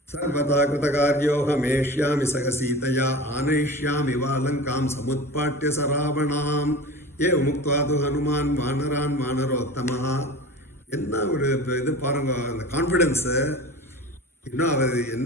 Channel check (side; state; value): both; normal; correlation 0.35